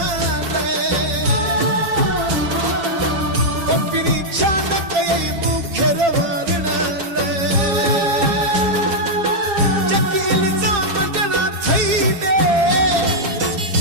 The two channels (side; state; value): left; late; 7.4 ms